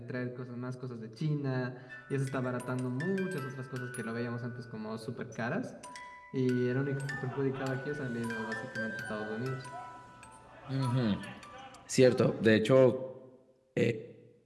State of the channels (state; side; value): identical; both; correlation 1.00